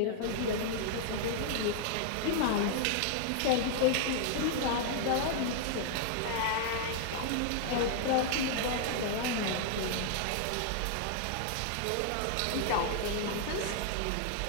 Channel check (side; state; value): both; different; correlation 0.00